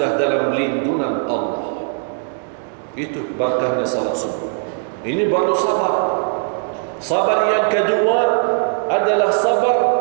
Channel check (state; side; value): silent; left; digital silence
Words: dalam lindungan Allah. Itu berkahnya salat subuh. Ini baru sabar. Sabar yang kedua adalah sabar